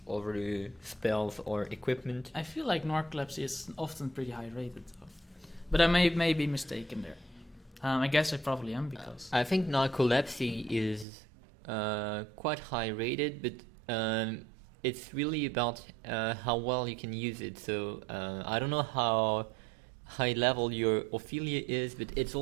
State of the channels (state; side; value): drops out; left; at 11.1 s